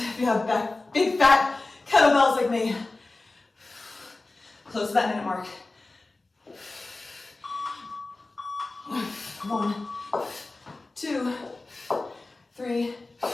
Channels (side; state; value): right; quieter; 3.3 dB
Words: you have big fat kettlebells like me. Close to that minute mark. 1, 2, 3,